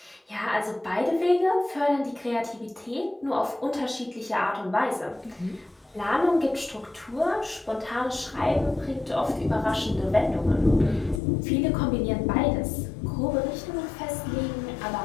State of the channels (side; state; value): right; drops out; at 11.2 s